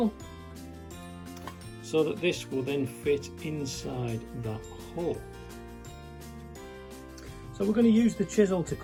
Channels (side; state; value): both; identical; correlation 1.00